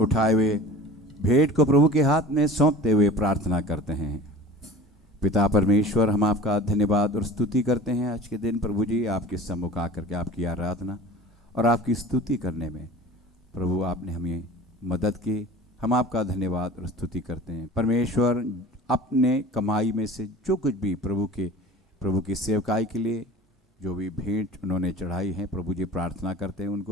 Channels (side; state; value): both; normal; correlation 0.40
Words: हुए भेंट को प्रभु के हाथ में सौंपते हुए प्रार्थना करते हैं। पिता परमेश्वर, हम आपका धन्यवाद और स्तुति करते हैं आज के दिन प्रभु जी, आपके सम्मुख आकर के आपकी आराधना और आपकी स्तुति करने में प्रभु आपने हमें मदद की। हम आपका धन्यवाद और स्तुति करते हैं परमेश्वर। अपने कमाई में से जो कुछ भी प्रभु की सेवकाई के लिए जो भी भेंट उन्होंने चढ़ाई है प्रभु जी प्रार्थना करते हैं